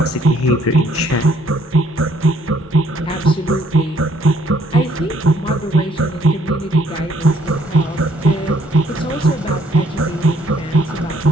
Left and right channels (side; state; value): both; normal; correlation 0.65